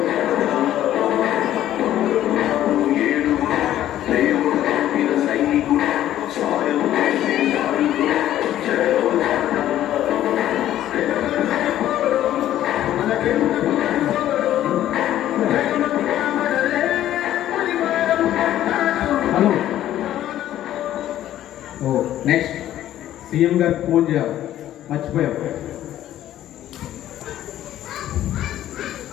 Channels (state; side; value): quieter; right; 12.5 dB